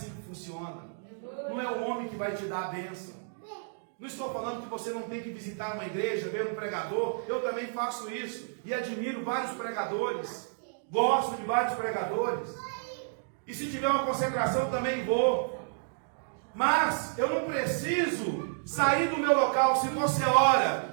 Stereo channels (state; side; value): silent; left; digital silence